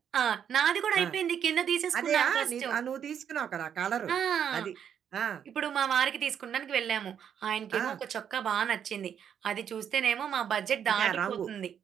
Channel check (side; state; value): left; quieter; 8.5 dB